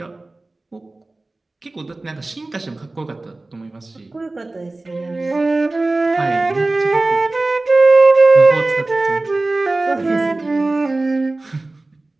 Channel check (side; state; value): left; quieter; 3.0 dB